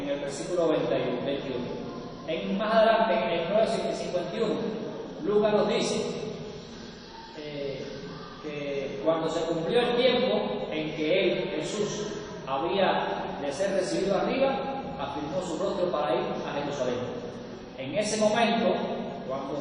el versículo 21. Más adelante, en el 9:51, Lucas nos dice que cuando se cumplió el tiempo en que él, Jesús, había de ser recibido arriba, afirmó su rostro para ir a Jerusalén. En ese momento,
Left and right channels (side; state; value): both; identical; correlation 1.00